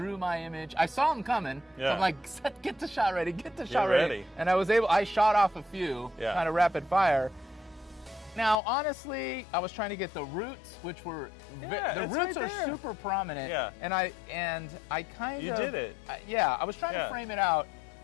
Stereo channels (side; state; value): right; drops out; at 8.6 s